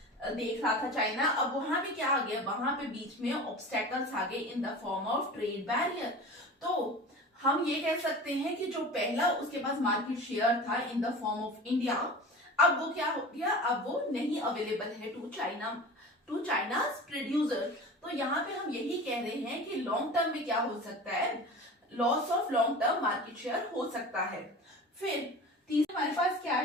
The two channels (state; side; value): normal; both; correlation 0.36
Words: देख रहा था चाइना, अब वहां पे क्या आ गया, वहां पे बीच में ऑब्स्टेकल्स आ गए in the form of trade barrier. तो हम ये कह सकते हैं कि जो पहला उसके पास मार्केट शेयर था in the form of India, अब वो क्या हो गया, अब वो नहीं अवेलेबल है टू चाइना's प्रोड्यूसर। तो यहाँ पे हम यही कह रहे हैं कि लॉन्ग टर्म में क्या हो सकता है, loss of long term market share हो सकता है। फिर तीसरा हमारे पास क्या